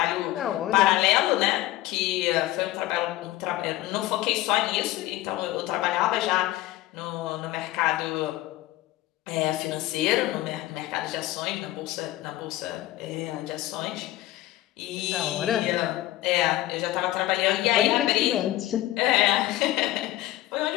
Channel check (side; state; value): right; quieter; 16.0 dB